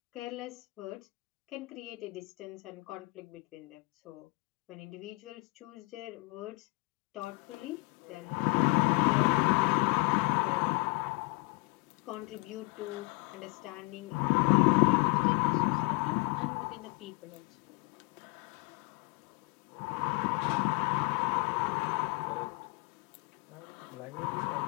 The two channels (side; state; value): right; quieter; 27.5 dB